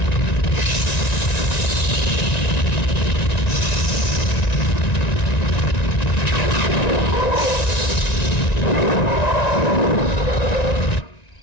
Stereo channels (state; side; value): late; right; 1.9 ms